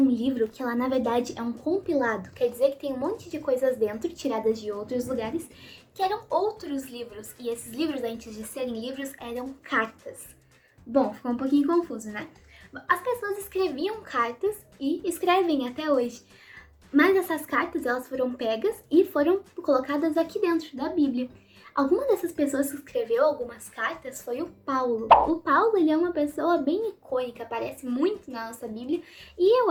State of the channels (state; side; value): identical; both; correlation 1.00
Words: livro que ela na verdade é um compilado, quer dizer que tem um monte de coisas dentro, tiradas de outros lugares, que eram outros livros, e esses livros, antes de serem livros, eram cartas. Bom, ficou um pouquinho confuso, né? As pessoas escreviam cartas e escrevem até hoje. Mas essas cartas, elas foram pegas e foram colocadas aqui dentro da Bíblia. Alguma dessas pessoas que escreveu algumas cartas foi o Paulo. O Paulo, ele é uma pessoa bem icônica, aparece muito na nossa Bíblia e